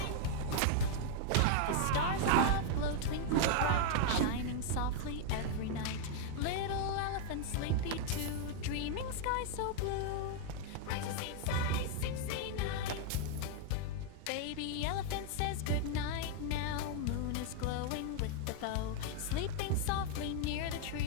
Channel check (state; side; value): different; both; correlation 0.00